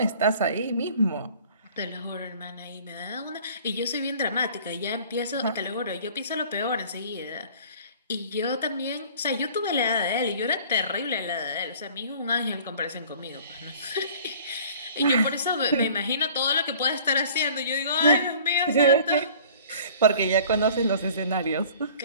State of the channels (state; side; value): inverted; both; correlation -0.49